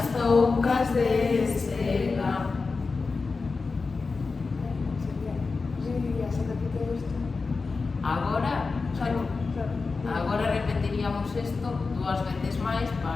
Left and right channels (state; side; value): quieter; right; 4.3 dB